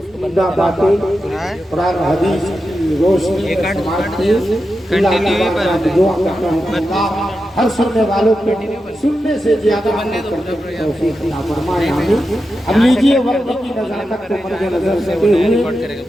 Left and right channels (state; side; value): normal; both; correlation 0.89